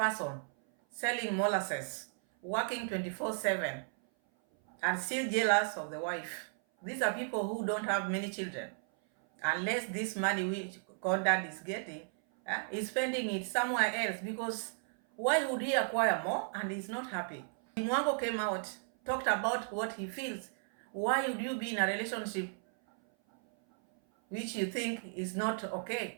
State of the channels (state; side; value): silent; left; 55 dB below the other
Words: selling molasses, working 24/7, and still jealous of the wife. These are people who don't have many children. Unless this money which Conrad is getting, is spending it somewhere else, because why would he acquire more and he's not happy? Dee Mwango came out, talked about what he feels. Why would you be in a relationship which you think is not